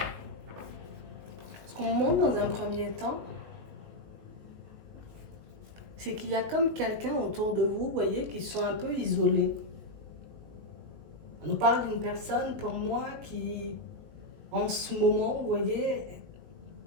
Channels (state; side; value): late; left; 19 ms